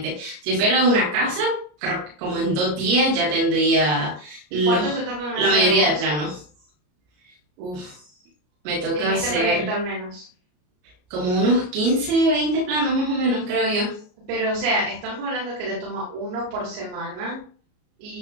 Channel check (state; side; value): late; left; 33 ms